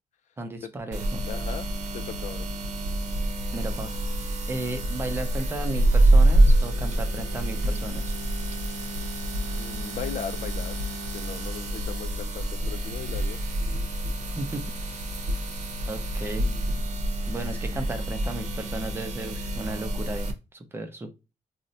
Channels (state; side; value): normal; both; correlation 0.86